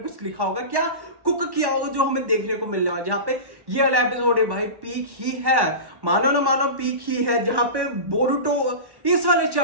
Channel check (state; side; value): late; left; 1.1 ms